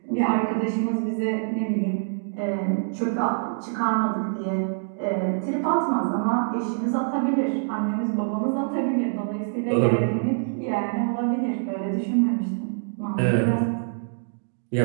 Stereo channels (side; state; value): left; silent; digital silence